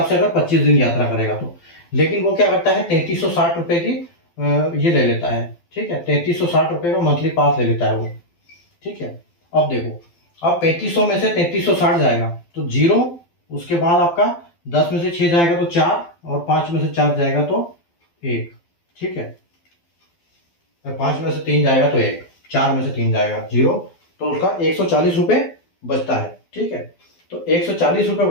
से अगर 25 दिन यात्रा करेगा तो। लेकिन वो क्या करता है, 3360 रुपए की ये ले लेता है। ठीक है। 3360 रुपए का मंथली पास ले लेता है वो। ठीक है। अब देखो, अब 3500 में से 3360 जाएगा तो 0, उसके बाद आपका 10 में से 6 जाएगा तो 4, और 5 में से 4 जाएगा तो 1। ठीक है। 5 में से 3 जाएगा तो 1, 4 में से 3 जाएगा 0, तो उसका 140 रुपए बचता है। ठीक है। तो 140 रुपए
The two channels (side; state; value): right; late; 12 ms